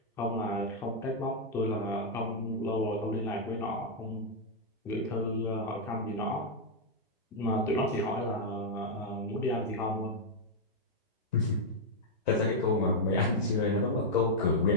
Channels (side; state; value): both; normal; correlation -0.03